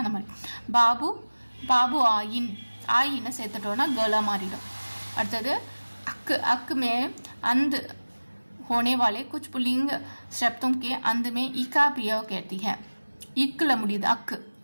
அந்த மாதிரி. பாபு பாபு ஆயின், ஆயின்னு சேர்த்துட்டோன்னா गला மாறிடும். அடுத்தது अक अक में अंध होने वाले कुछ पुल्लिंग शब्दों के अंत में इका प्रयोग कहती है. इक्ல முடியுது अक,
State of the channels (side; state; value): both; inverted; correlation -1.00